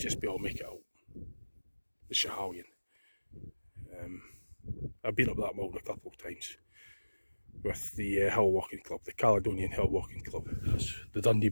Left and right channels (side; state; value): both; inverted; correlation -1.00